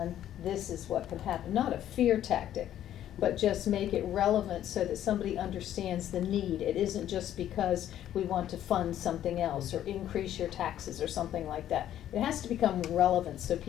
this is what can happen. Not a fear tactic, but just make it relevant so that somebody understands the need. It isn't just because we want to fund something else or increase your taxes or something like that. It has to become relevant so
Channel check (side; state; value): right; quieter; 11.6 dB